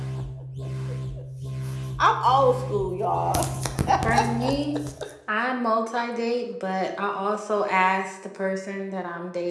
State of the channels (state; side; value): identical; both; correlation 1.00